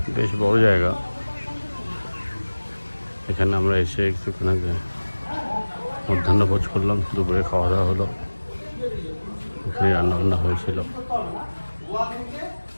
বেশ বড় জায়গা। এখানে আমরা এসে একটুখানি মধ্যাহ্ন ভোজ করলাম, দুপুরে খাওয়া দাওয়া হলো, এখানে রান্নাবান্না হয়েছিল।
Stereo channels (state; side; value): inverted; both; correlation -1.00